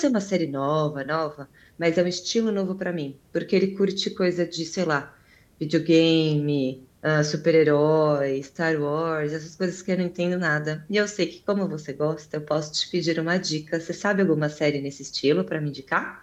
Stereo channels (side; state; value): both; identical; correlation 1.00